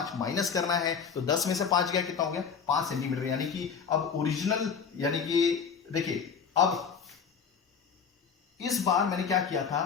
माइनस करना है, तो 10 में से 5 गया, कितना हो गया 5 सेंटीमीटर। यानी कि अब ओरिजिनल, यानी कि देखिए अब इस बार मैंने क्या किया था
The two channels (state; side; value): quieter; right; 6.5 dB